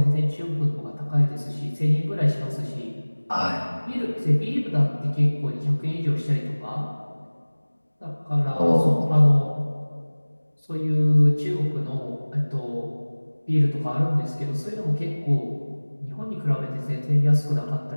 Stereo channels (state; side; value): inverted; both; correlation -1.00